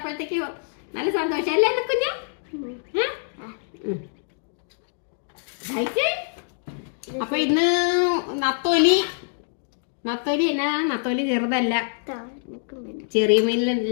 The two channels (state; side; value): silent; right; digital silence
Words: നല്ല സന്തോഷം അല്ലേ കുഞ്ഞ? അപ്പൊ ഇന്ന് നത്തോലി എന്നാ, നത്തോലി ചെറുതല്ല, ചെറിയ